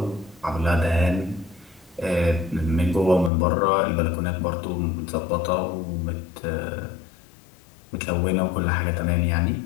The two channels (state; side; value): drops out; right; at 3.3 s